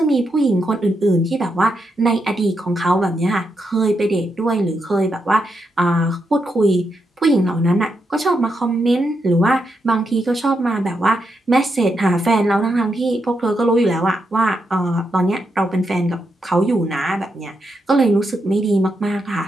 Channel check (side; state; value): both; normal; correlation 0.83